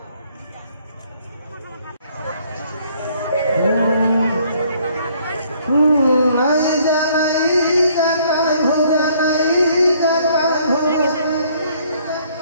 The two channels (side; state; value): both; inverted; correlation -0.63